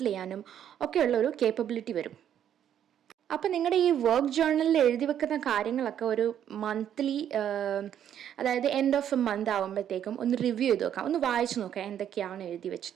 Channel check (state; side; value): quieter; left; 9.9 dB